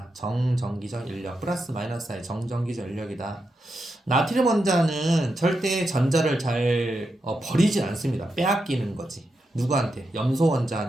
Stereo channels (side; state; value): both; normal; correlation 0.86